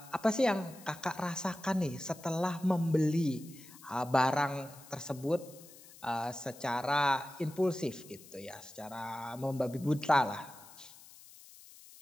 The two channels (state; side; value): noise; left; hiss, 20 dB below the sound